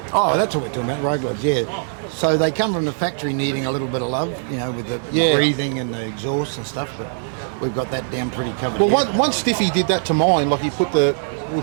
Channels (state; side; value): silent; left; digital silence